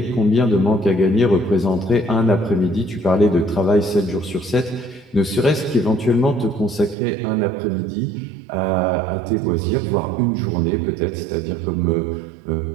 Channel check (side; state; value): left; drops out; at 7.0 s